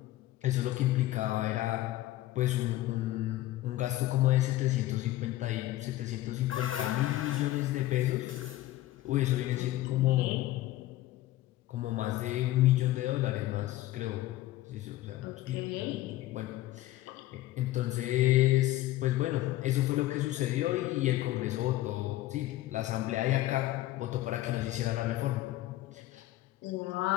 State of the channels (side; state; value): right; quieter; 15.7 dB